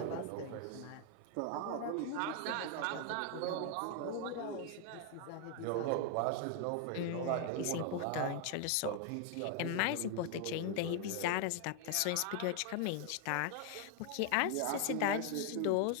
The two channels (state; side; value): different; both; correlation 0.00